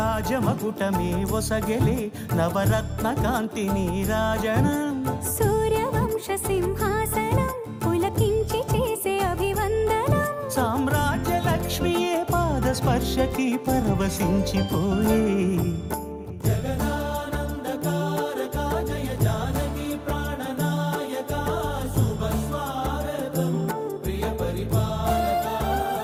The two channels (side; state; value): both; identical; correlation 1.00